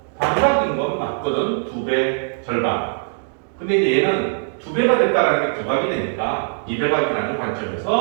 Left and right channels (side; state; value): left; silent; digital silence